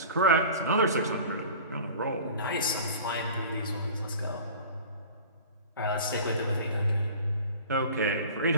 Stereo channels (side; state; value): both; inverted; correlation -0.41